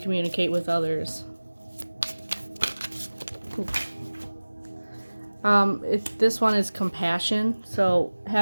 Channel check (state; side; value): inverted; both; correlation -1.00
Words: with others? This one is compassion. So